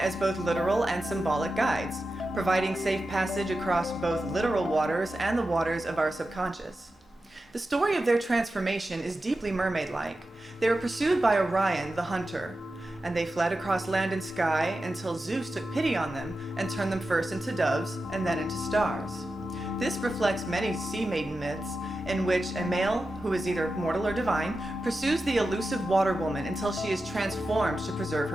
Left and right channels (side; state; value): both; normal; correlation 0.91